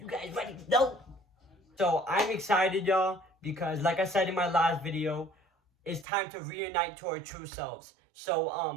guys ready to know? So I'm excited, y'all, because like I said in my last video, it's time to reunite to our true selves. So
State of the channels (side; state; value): left; drops out; at 6.1 s